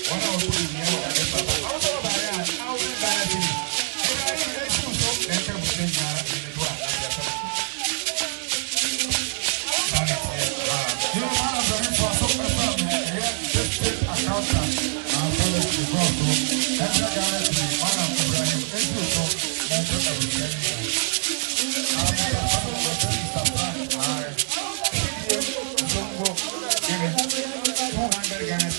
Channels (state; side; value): silent; left; 57 dB below the other